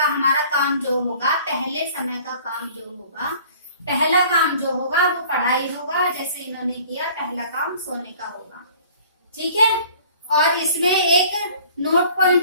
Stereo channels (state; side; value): inverted; both; correlation -0.51